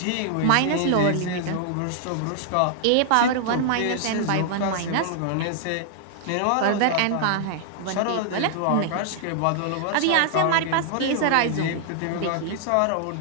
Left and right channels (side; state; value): both; different; correlation -0.01